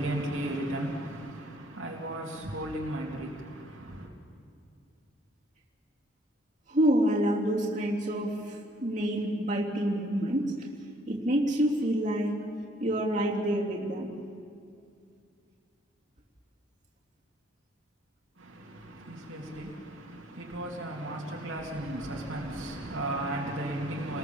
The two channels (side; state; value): both; normal; correlation 0.62